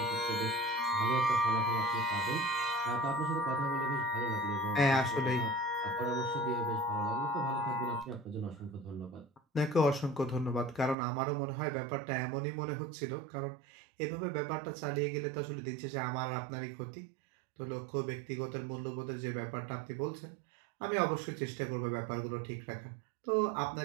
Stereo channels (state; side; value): drops out; left; at 11.0 s